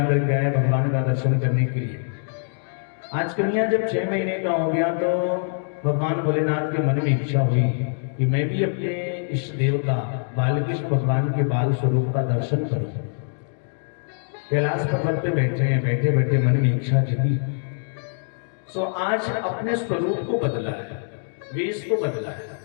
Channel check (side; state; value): right; silent; digital silence